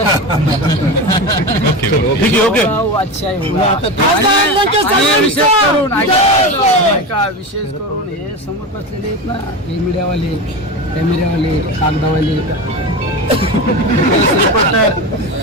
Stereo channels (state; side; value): normal; both; correlation 0.23